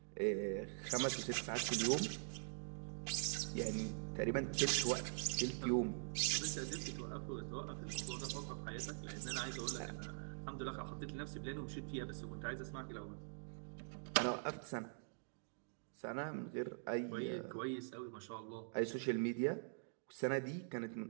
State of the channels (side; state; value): left; silent; digital silence